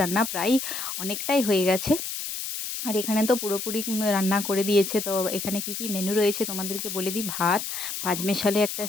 রান্না প্রায় অনেকটাই হয়ে গেছে। আর এখানে তো পুরোপুরি রান্না করে দিয়েছে। তো এখানে কি কি মেনু রয়েছে তোমাদেরকে বলে দিই। ভাত, পাঁচমেশালি একটা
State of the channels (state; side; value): noise; left; hiss, 5 dB below the sound